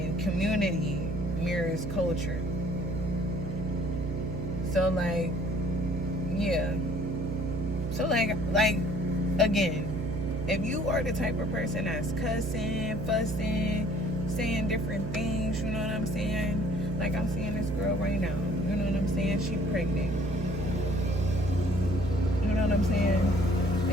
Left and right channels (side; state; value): right; noise; hum, 4 dB below the sound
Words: community mirrors culture. So, like, yeah. So, like again, if you are the type of person that's cussing, fussing, saying different things, you know what I'm saying? Like, I'm seeing this girl right now, you know what I'm saying? She pregnant. know what I'm saying?